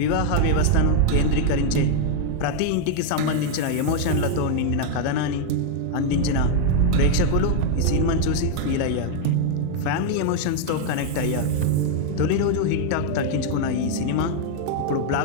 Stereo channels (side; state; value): both; different; correlation 0.00